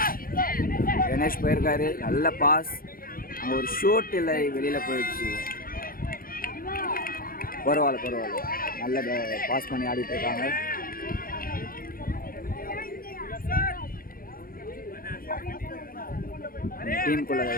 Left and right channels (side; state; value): right; late; 0.42 ms